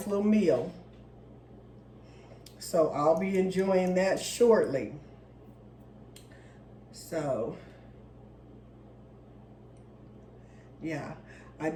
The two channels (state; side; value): identical; both; correlation 1.00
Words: little meal. So I'll be enjoying that shortly. So, yeah, I